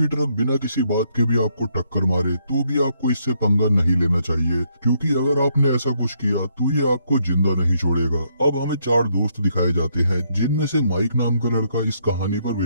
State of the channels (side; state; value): both; inverted; correlation -0.73